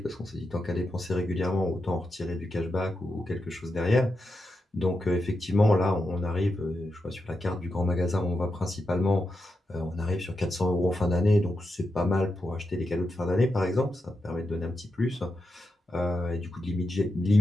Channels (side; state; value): both; normal; correlation 0.87